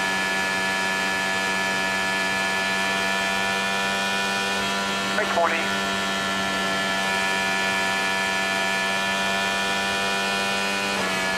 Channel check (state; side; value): identical; both; correlation 1.00